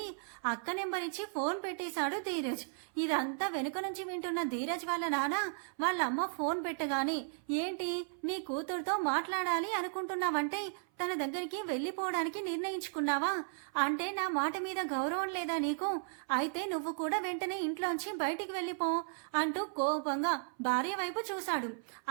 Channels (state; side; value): silent; left; 54 dB below the other